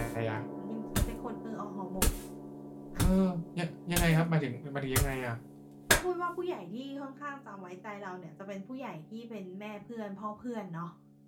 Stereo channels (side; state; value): both; identical; correlation 1.00